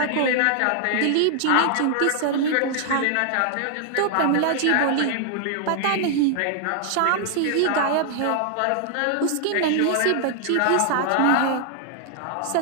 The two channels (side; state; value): both; different; correlation 0.00